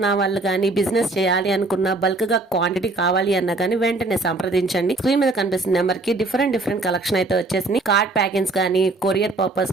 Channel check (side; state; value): left; quieter; 3.2 dB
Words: వాళ్ళు కానీ, బిజినెస్ చేయాలి అనుకున్న, బల్క్ గా క్వాంటిటీ కావాలి అన్నా కానీ వెంటనే సంప్రదించండి. స్క్రీన్ మీద కనిపిస్తున్న నెంబర్ కి డిఫరెంట్ కలెక్షన్ అయితే వచ్చేసింది. కార్డ్ ప్యాకింగ్స్ కానీ, కొరియర్ పర్పస్